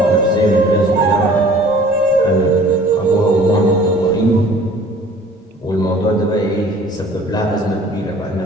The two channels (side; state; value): both; normal; correlation 0.50